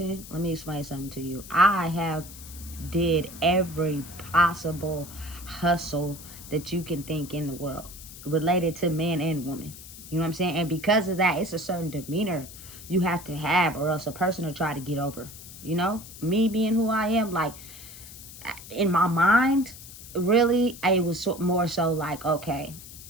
let me explain something to you. I have did every possible hustle that you can think in the world related to man and woman. You know what I'm saying? And because of that, it's a certain demeanor you have to have, or else a person will try to get over. You know, me being who I am, like, in my mind, really, it was more so like, okay,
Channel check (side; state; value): left; noise; hiss, 15 dB below the sound